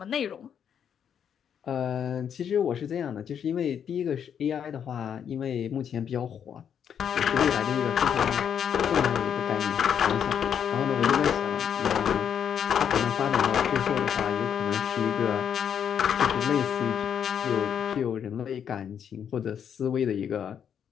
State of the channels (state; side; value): quieter; right; 8.3 dB